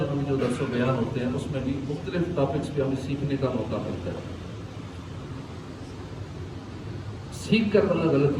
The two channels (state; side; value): identical; both; correlation 1.00